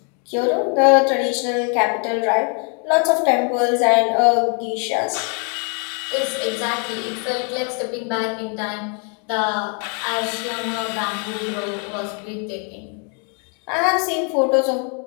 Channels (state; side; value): quieter; right; 38.7 dB